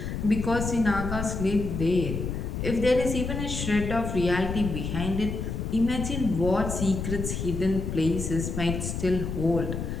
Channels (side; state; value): left; noise; rumble, 4 dB below the sound